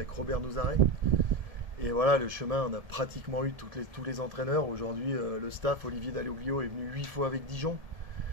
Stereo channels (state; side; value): late; left; 1.7 ms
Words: Robert Nouzaret. Et voilà, le chemin, on a pratiquement eu tous les entraîneurs. Aujourd'hui, le staff, Olivier Dalloglio, est venu 8 fois avec Dijon.